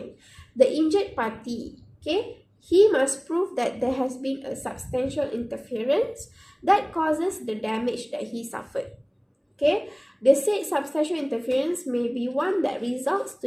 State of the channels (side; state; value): both; identical; correlation 1.00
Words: the injured party, okay, he must prove that there has been a substantial interference that causes the damage that he suffered. Okay, the said substantial interference may be one that results